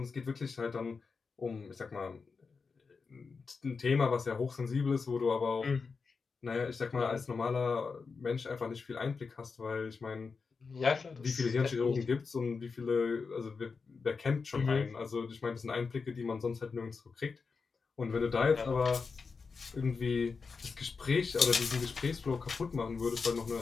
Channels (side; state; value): right; quieter; 4.9 dB